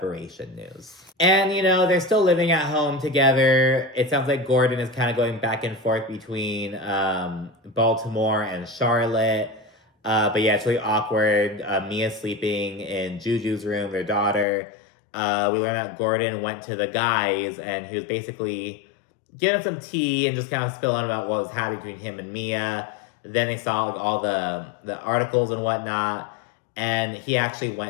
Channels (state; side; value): drops out; right; at 14.5 s